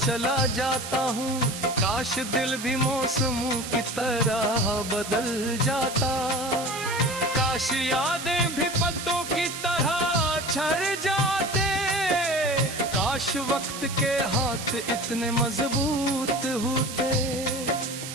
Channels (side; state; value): right; noise; hiss, 9 dB below the sound